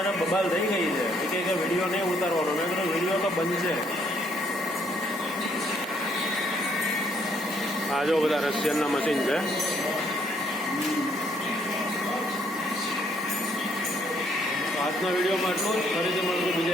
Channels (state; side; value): normal; both; correlation 0.68